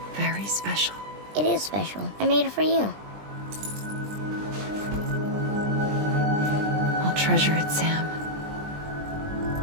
Very special. It is special. I made it for you. I'll treasure it, Sam.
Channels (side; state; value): left; late; 20 ms